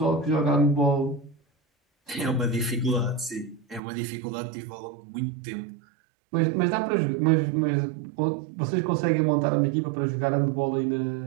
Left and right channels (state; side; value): drops out; left; at 3.8 s